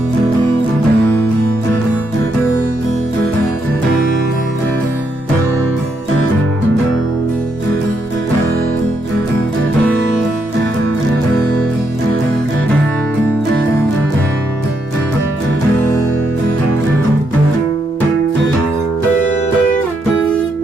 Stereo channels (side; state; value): both; normal; correlation 0.77